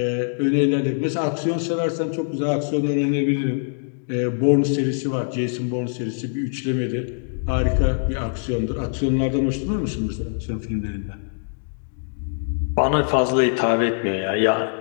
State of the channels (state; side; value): silent; right; digital silence